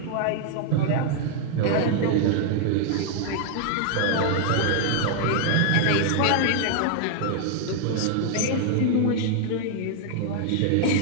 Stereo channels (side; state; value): both; different; correlation 0.00